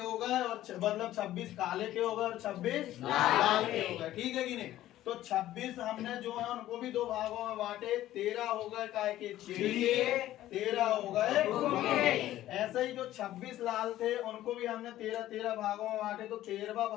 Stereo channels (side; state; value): right; quieter; 14.0 dB